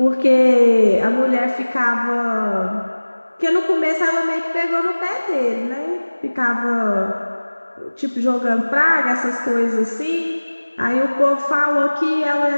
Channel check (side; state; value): both; inverted; correlation -1.00